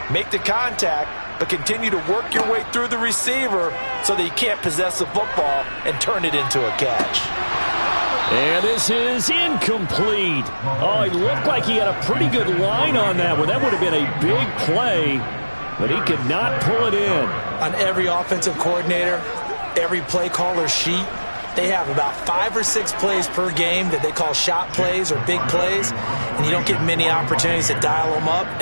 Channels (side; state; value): both; inverted; correlation -1.00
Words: make the contact, but continue to work your way through the receiver so that you can't possess the football and turn it into a catch. And this is incomplete. Oh, he looked like he had a pretty good line on that one. That would have been a big play, but he could not pull it in. On every offensive coordinator, every play caller sheet, they have about 5 or 6 plays per game that they call shot plays or big plays, and you don't get many opportunities to dial them up,